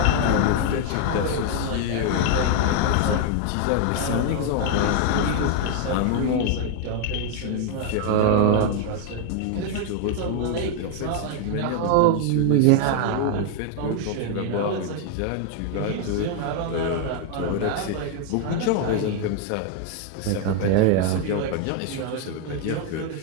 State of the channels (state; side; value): different; both; correlation 0.00